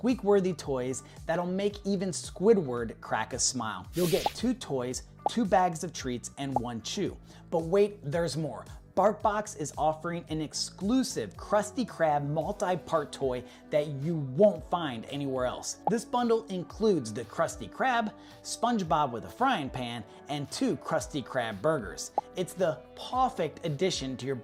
toys that'll make even Squidward crack a smile. You'll get 2 toys, 2 bags of treats, and 1 chew. But wait, there's more. BarkBox is offering an exclusive Krusty Krab multi-part toy that you won't find anywhere else. This bundle includes the Krusty Krab, SpongeBob with a frying pan, and 2 Krusty Krab burgers. It's the perfect addition to your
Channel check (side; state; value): both; identical; correlation 1.00